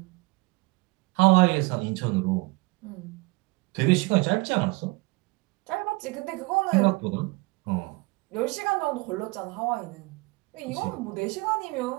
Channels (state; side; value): quieter; left; 25.5 dB